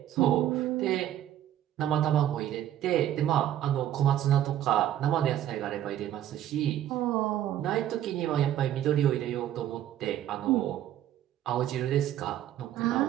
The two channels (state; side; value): quieter; left; 11.8 dB